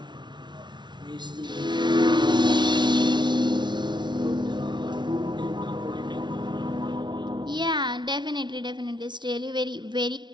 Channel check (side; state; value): left; late; 0.22 ms